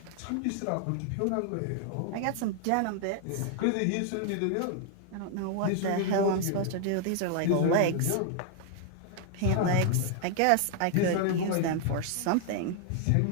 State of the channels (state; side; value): different; both; correlation 0.00